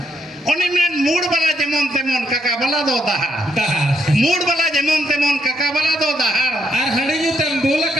ओनी में मूड वाला जेमन तेमन काका वाला दो दहाड़ दहार मूड वाला जेमन तेमन काका वाला दो दहाड़ और हनी जो तम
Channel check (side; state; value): both; normal; correlation 0.76